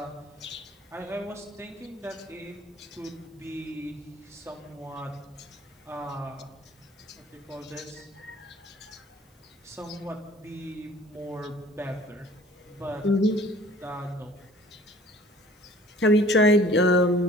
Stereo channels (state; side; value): normal; both; correlation 0.51